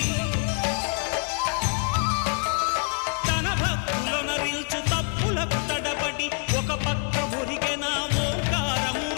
తన భక్తులనరిల్చు తప్పులకు తడబడి ఒక పక్క ఒరిగెన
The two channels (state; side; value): quieter; right; 39.5 dB